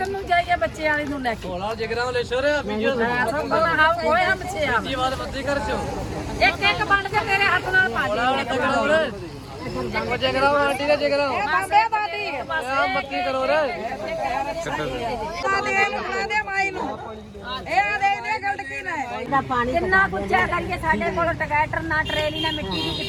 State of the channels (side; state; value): both; identical; correlation 1.00